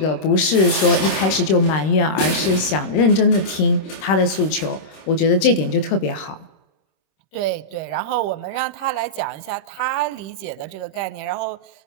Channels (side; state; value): right; late; 26 ms